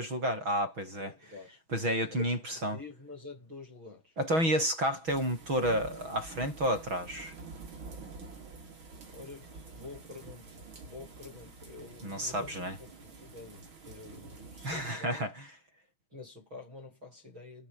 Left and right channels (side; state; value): left; late; 6.2 ms